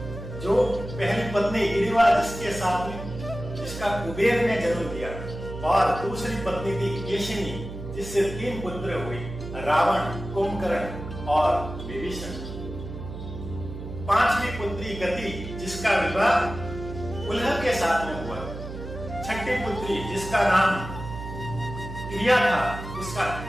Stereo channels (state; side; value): noise; right; hum, 9 dB below the sound